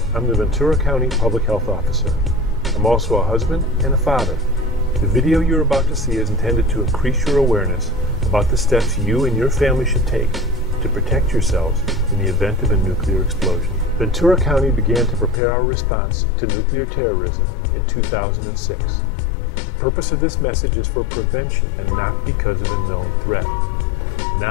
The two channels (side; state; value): right; drops out; at 15.4 s